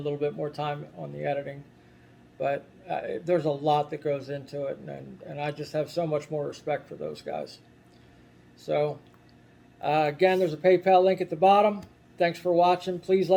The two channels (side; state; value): both; identical; correlation 1.00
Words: bit more time on the editing. But there's a lot that goes into it, and I just have so much more respect for those guys. So, again, there's a PayPal link at the bottom. Thanks for watching. Please